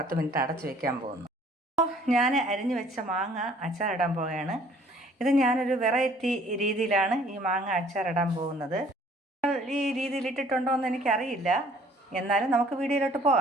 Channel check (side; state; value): both; normal; correlation 0.56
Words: മിനിറ്റ് അടച്ചു വെക്കാൻ പോകുന്നു. അപ്പോൾ ഞാൻ അരിഞ്ഞു വെച്ച മാങ്ങ അച്ചാറിടാൻ പോവുകയാണ്. ഇത് ഞാനൊരു വെറൈറ്റി രീതിയിലാണ് ഈ മാങ്ങ അച്ചാറിടാൻ പോകുന്നത്. ഈ രീതിയിൽ ഇട്ടിട്ടുണ്ടോ എന്ന് എനിക്കറിയില്ല, എന്നാലും നമുക്ക് വീഡിയോയിലോട്ട്